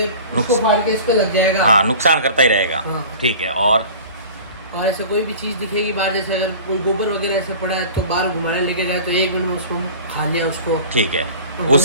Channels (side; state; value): both; inverted; correlation -0.40